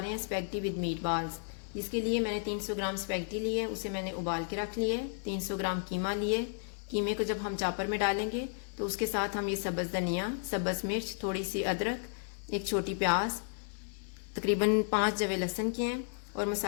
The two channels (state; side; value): silent; right; digital silence